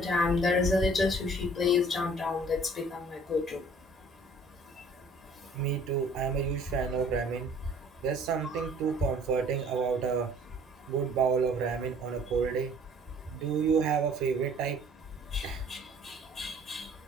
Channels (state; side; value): normal; both; correlation 0.54